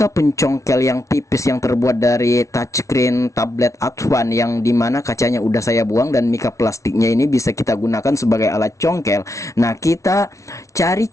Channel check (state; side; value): late; right; 0.15 ms